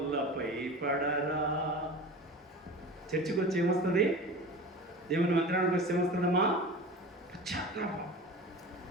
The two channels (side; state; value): both; normal; correlation 0.34